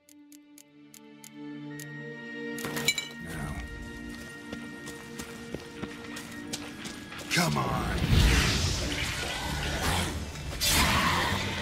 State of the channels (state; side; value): identical; both; correlation 1.00